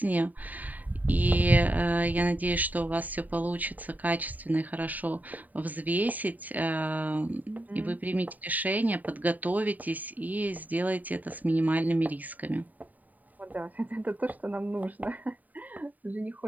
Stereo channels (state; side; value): late; left; 0.080 ms